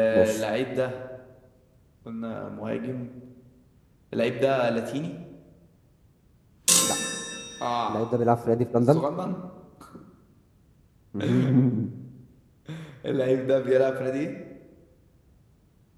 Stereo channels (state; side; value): identical; both; correlation 1.00